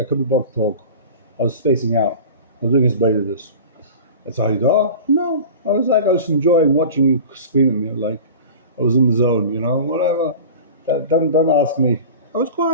couldn't be bothered to talk. I was spacing out. I was doing his bait of this. That's how you are? No. I was enjoying watching you scream at me. Like I was in the zone, you know, whatever. Don't ask me. I was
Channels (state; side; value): inverted; both; correlation -0.36